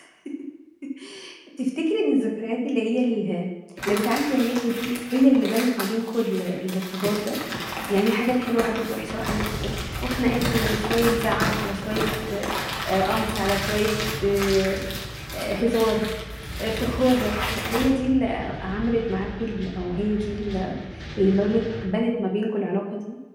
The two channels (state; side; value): identical; both; correlation 1.00